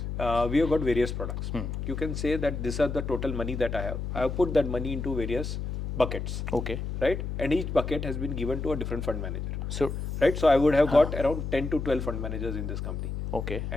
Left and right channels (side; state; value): left; noise; hum, 4 dB below the sound